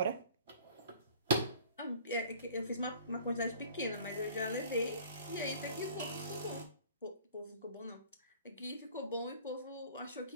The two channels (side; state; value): both; inverted; correlation -0.48